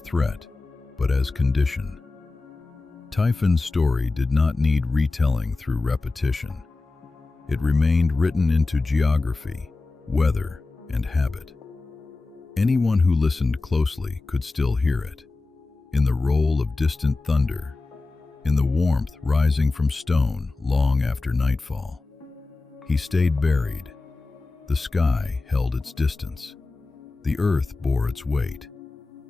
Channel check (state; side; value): quieter; right; 3.5 dB